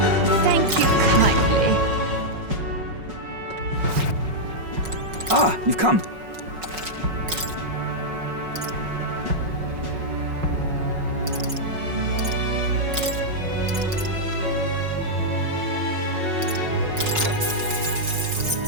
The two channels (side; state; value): left; late; 5.4 ms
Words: Thank you kindly. Ah, you've come.